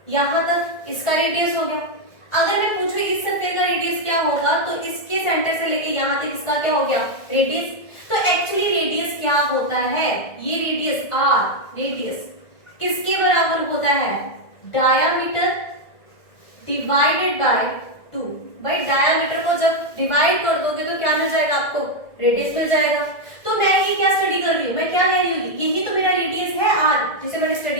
यहाँ तक इसका रेडियस हो गया। अगर मैं पूछूं इस स्फीयर का रेडियस क्या होगा, तो इसके सेंटर से लेके यहाँ तक इसका क्या हो गया? रेडियस। तो एक्चुअली रेडियस क्या होता है? ये रेडियस आर, रेडियस किसके बराबर होता है? Diameter divided by 2। भाई डायामीटर को जब डिवाइड कर दोगे तो क्या मिल जाएगा आपको? रेडियस मिल जाएगा। तो मैं ये क्या स्टडी कर रही हूँ? मैं क्या कह रही हूँ? यही तो मेरा रेडियस है आर, जिसे मैंने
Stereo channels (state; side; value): late; right; 1.6 ms